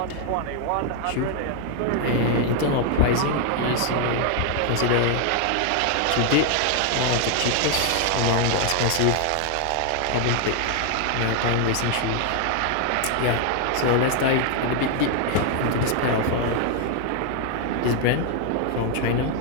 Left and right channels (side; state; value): both; different; correlation 0.00